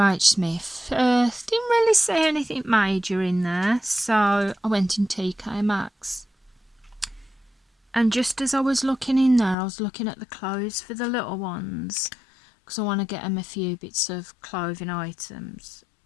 Smith, didn't really see anything major in there, so I went in TK Maxx. And just as I was looking in there, I was looking at the clothes for the little ones, because I want to get them a few bits of clothing items.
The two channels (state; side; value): drops out; right; at 9.6 s